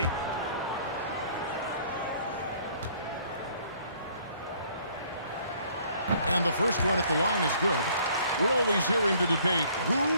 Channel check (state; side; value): inverted; both; correlation -0.60